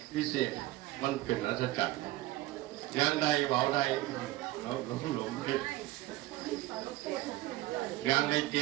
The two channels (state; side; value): quieter; left; 17.4 dB